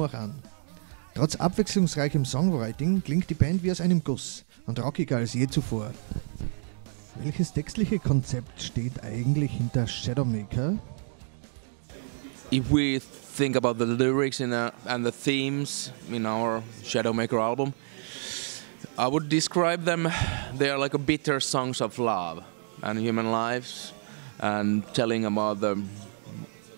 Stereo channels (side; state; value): left; silent; 59 dB below the other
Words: auch an. Trotz abwechslungsreichem Songwriting klingt die Band wie aus einem Guss und rockiger als je zuvor. Welches textliche Konzept steht eigentlich hinter Shadowmaker? If we think about the lyrics and the themes in our Shadowmaker album, I would describe them, they are like a bitter songs of love and human lives and telling about the